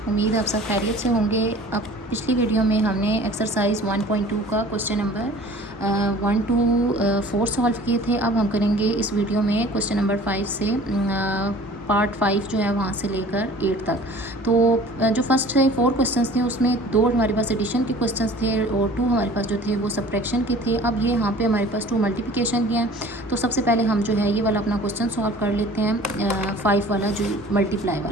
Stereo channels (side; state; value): both; normal; correlation 0.47